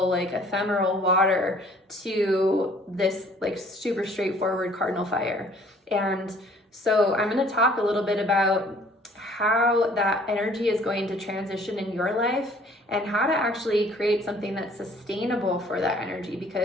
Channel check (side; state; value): both; normal; correlation 0.56